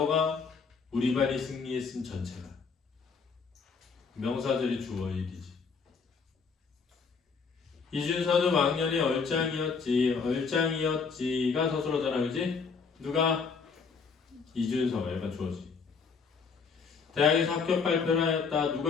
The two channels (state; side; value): quieter; right; 5.3 dB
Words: 우리 반이 승리했음 전체가. 명사절이 주어 일이지. 이준서는 왕년에 얼짱이었지가 서술어잖아, 그지? 누가? 이준서, 얘가 주어지. 대학에서 합격 발표를 하였다.